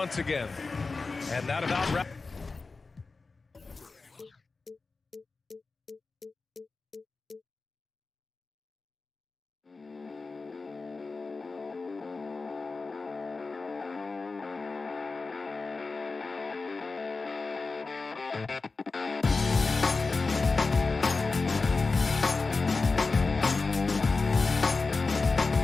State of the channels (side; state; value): right; quieter; 4.0 dB